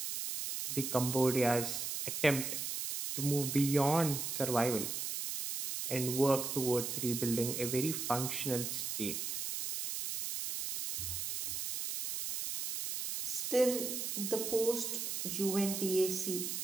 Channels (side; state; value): right; noise; hiss, 3 dB below the sound